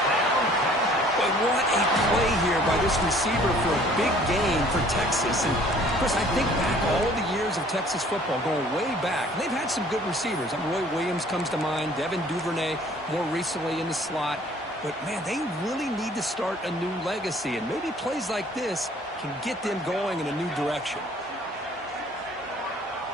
But what a play here by this receiver for a big gain for Texas. And, Chris, I think back all the years of Texas football, going way back. They've had some good receivers. Roy Williams comes to mind, Devin Duvernay more recently in the slot. But, man, they really need to start a new legacy. And maybe plays like this can get them going in a new direction.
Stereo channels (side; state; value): both; normal; correlation 0.55